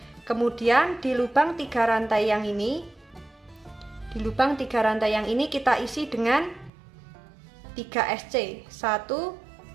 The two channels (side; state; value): left; drops out; at 6.7 s